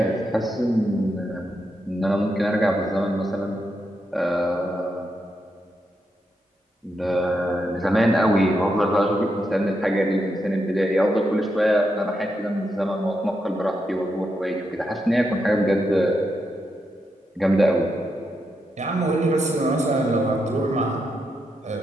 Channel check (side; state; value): both; normal; correlation 0.83